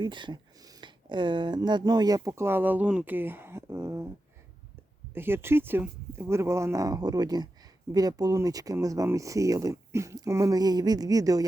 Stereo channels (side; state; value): both; normal; correlation 0.91